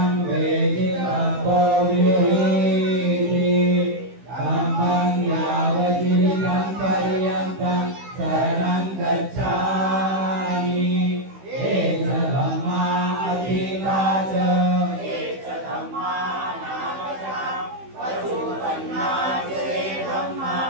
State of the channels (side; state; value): left; late; 15 ms